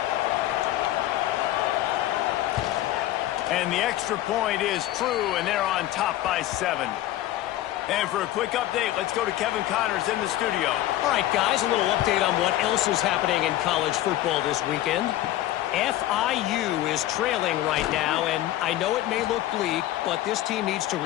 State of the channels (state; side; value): quieter; right; 14.4 dB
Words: And the extra point is true, and they're on top by 7. And for a quick update, let's go to Kevin Connors in the studio. All right, guys, a little update on what else is happening in college football this weekend. FIU is trailing right now, and I know it may look bleak, but this team needs to